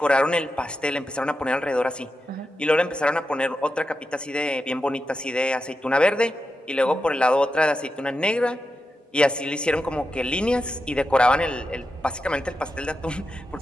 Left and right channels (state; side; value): normal; both; correlation 0.89